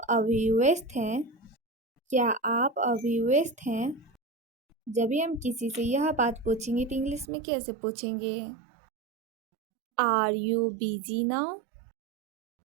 अभी व्यस्त हैं? क्या आप अभी व्यस्त हैं? जब भी हम किसी से यह बात पूछेंगे तो इंग्लिश में कैसे पूछेंगे? Are you busy now?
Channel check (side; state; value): left; drops out; at 7.2 s